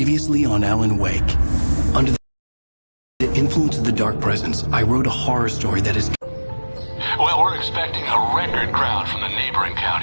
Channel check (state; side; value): inverted; both; correlation -1.00